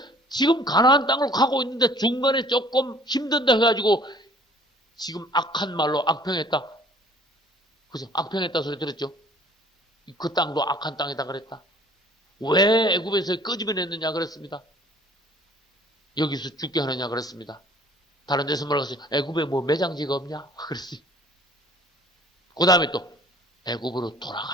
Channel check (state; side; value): normal; both; correlation 0.54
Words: 지금 가나안 땅으로 가고 있는데 중간에 조금 힘든다 해가지고 지금 악한 말로 악평했다. 그죠? 악평했다 소리 들었죠? 그 땅도 악한 땅이다 그랬다. 왜 애굽에서 끄집어냈느냐 그랬습니다. 여기서 죽게 하느냐 그랬습니다. 다른 데서 뭐라고 했어요? 애굽에 뭐 매장지가 없냐? 그랬어요. 그 다음에 또 애굽으로